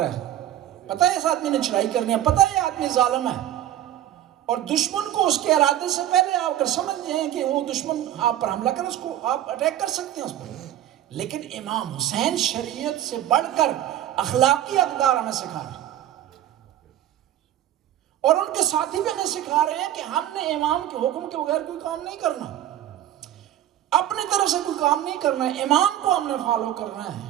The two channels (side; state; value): left; quieter; 12.3 dB